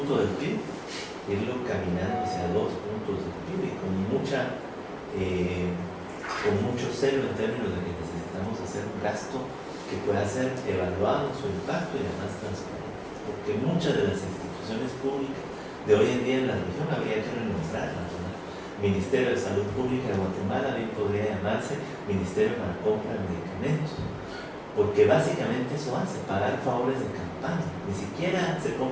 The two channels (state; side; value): identical; both; correlation 1.00